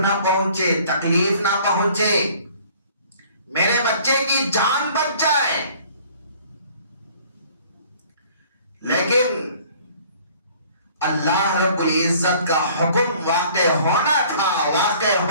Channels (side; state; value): both; inverted; correlation -0.54